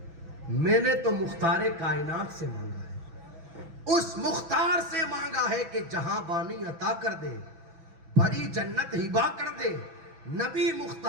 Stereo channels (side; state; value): left; late; 6.1 ms